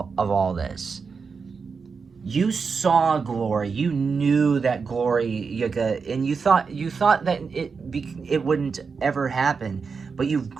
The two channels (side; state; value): left; quieter; 5.3 dB